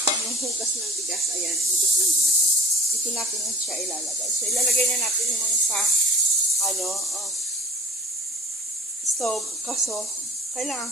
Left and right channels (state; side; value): normal; both; correlation 0.45